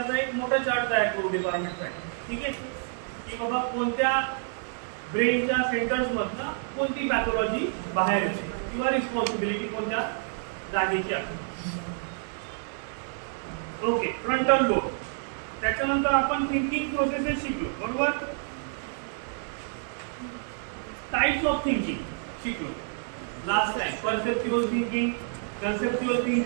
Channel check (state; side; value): silent; left; 59 dB below the other